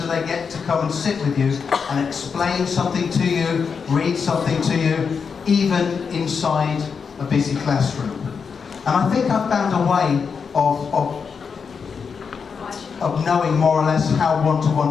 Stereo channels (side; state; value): right; quieter; 5.9 dB